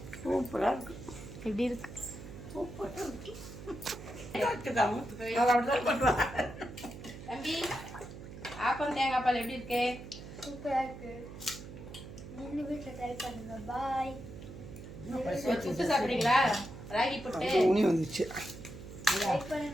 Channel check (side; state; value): right; noise; hum, 13 dB below the sound